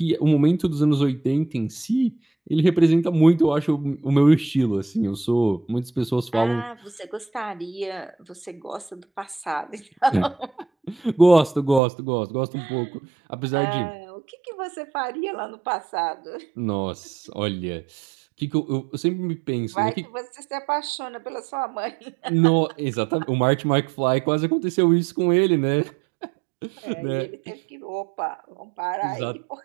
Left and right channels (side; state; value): left; drops out; at 11.8 s